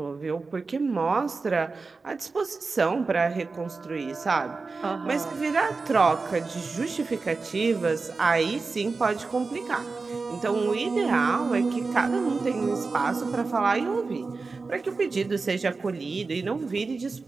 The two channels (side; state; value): left; quieter; 4.1 dB